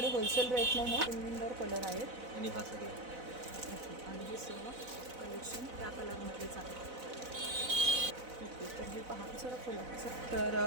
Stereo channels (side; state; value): left; late; 4.0 ms